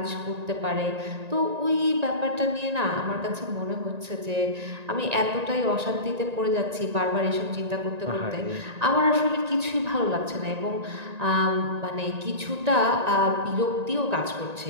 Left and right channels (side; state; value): left; late; 1.9 ms